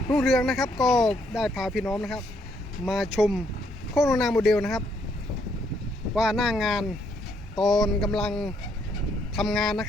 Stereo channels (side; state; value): both; normal; correlation 0.72